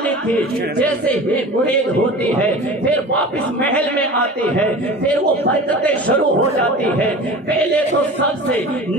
تھی۔ جیسے ہی مرید ہوتی ہے پھر واپس محل میں آتی ہے، پھر وہ برکتیں شروع ہو جاتی ہے۔ پہلے تو سب سے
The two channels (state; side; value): normal; both; correlation 0.36